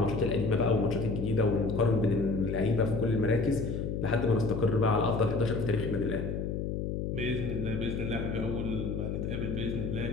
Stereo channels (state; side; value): noise; left; hum, 2 dB below the sound